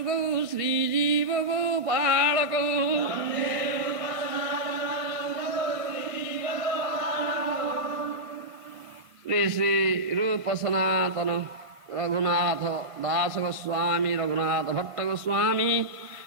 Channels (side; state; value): left; late; 1.5 ms